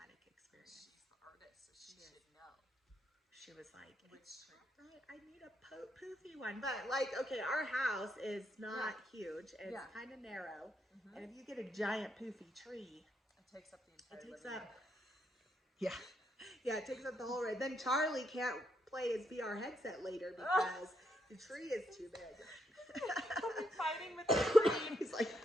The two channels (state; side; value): normal; both; correlation 0.77